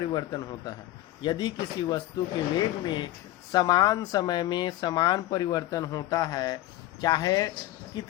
होता है। यदि किसी वस्तु के वेग में समान समय में समान परिवर्तन होता है, चाहे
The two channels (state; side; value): quieter; right; 15.1 dB